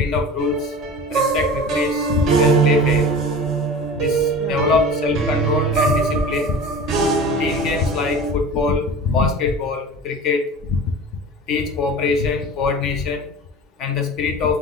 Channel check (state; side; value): normal; both; correlation 0.36